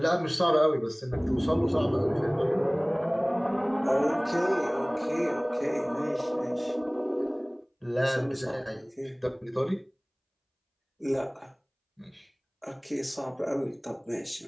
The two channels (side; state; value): both; identical; correlation 1.00